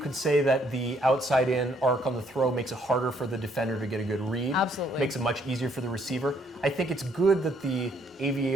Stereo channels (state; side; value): normal; both; correlation 0.68